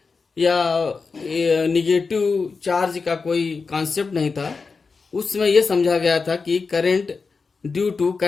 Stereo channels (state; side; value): quieter; right; 4.6 dB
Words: या निगेटिव चार्ज का कोई कॉन्सेप्ट नहीं था। उस समय यह समझा गया था कि current due to